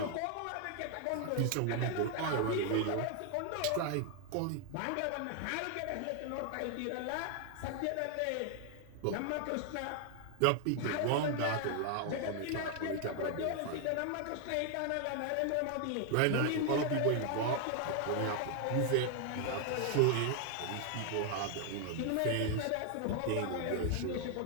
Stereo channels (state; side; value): different; both; correlation 0.00